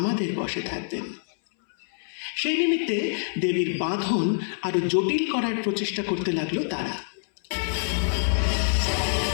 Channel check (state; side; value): silent; right; 61 dB below the other